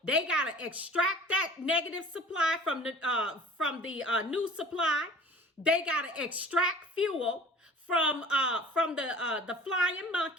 they gotta extract that negative supply from the new supply. They gotta extract fuel from the flying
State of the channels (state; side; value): normal; both; correlation 0.45